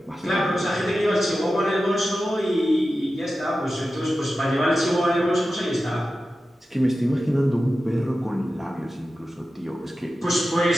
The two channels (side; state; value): both; normal; correlation 0.93